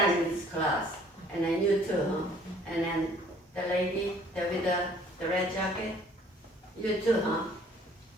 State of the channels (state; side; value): normal; both; correlation 0.56